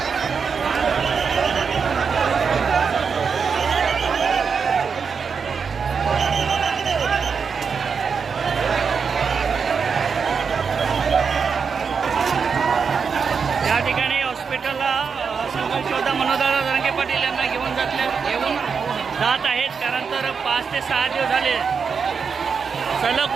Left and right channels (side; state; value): left; quieter; 5.9 dB